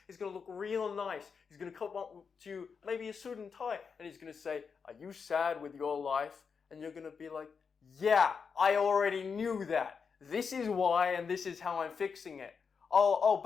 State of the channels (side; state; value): right; quieter; 5.8 dB